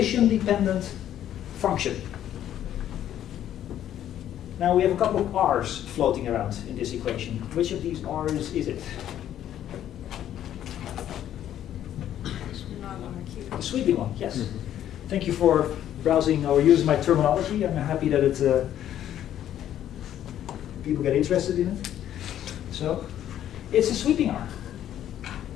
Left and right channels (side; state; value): right; quieter; 11.2 dB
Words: function. Now we have a couple of r's floating around in this equation. Which of these r's is it? The sweeping one, yes. Mm-hmm. Thank you for browsing or using my terminology. I'm happy that people get interested in it. So, it's a sweeping R.